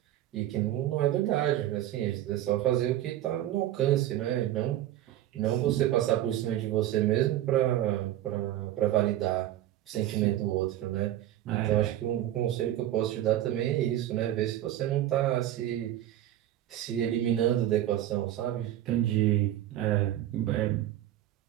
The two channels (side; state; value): left; quieter; 13.1 dB